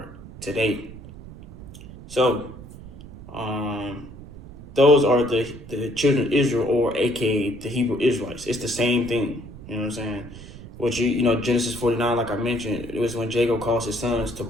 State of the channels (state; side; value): noise; right; rumble, 15 dB below the sound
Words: today. So, those are the children of Israel, or aka the Hebrew Israelites. It's the same thing, you know what I'm saying? Which, Genesis 49, like I mentioned, it was when Jacob calls his sons to